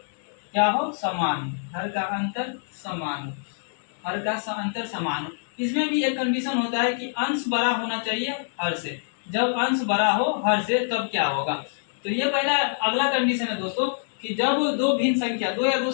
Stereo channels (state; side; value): silent; right; digital silence